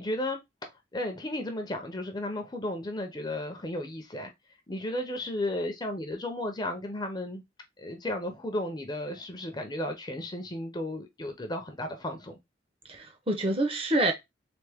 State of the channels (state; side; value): normal; both; correlation 0.49